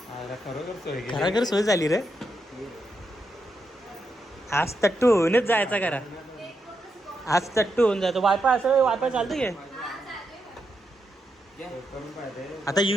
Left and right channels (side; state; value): both; normal; correlation 0.83